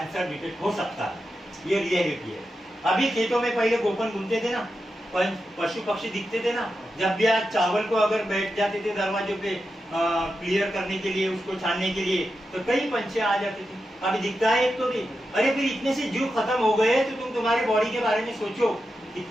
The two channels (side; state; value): both; normal; correlation 0.89